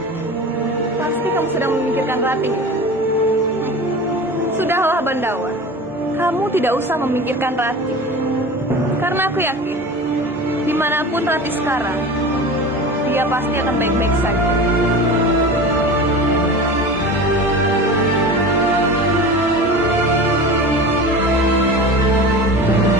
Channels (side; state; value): both; normal; correlation 0.34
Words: Pasti kamu sedang memikirkan Rati. Sudahlah, Bandawa. Kamu tidak usah memikirkan Rati. Karena aku yakin, dimanapun Rati sekarang, dia pasti akan baik-baik saja.